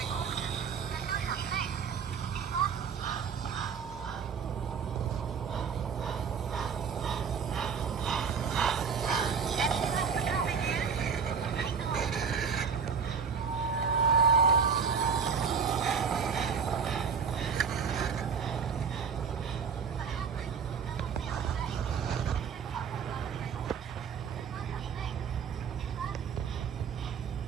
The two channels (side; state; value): left; quieter; 6.2 dB